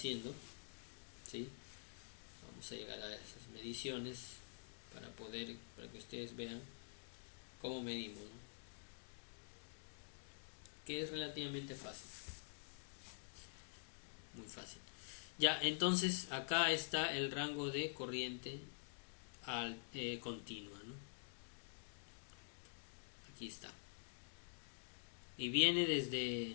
¿sí? Vamos a llegar a esas mediciones para que ustedes vean cómo medimos, ¿no? Que es relativamente fácil, muy fácil. Ya, entonces acá está el rango de corriente continua, ¿no? Aquí está. Y viene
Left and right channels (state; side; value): silent; right; digital silence